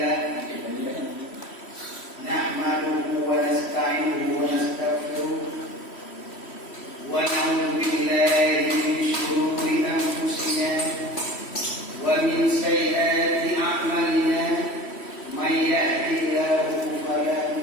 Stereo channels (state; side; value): late; right; 3.1 ms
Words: nahmaduhu wa nasta'inuhu wa nastaghfiruh wa na'udzu billahi min shururi anfusina wa min sayyiati a'malina. من يهده الله فلا